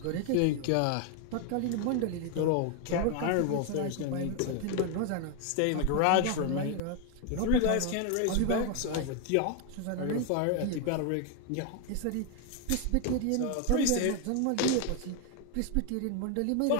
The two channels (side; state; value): both; different; correlation 0.01